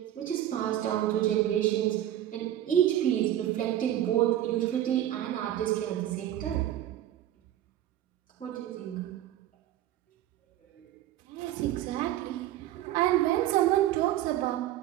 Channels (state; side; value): quieter; left; 12.5 dB